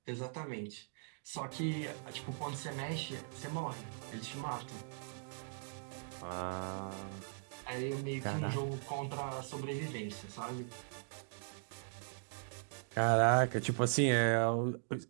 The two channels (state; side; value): silent; left; digital silence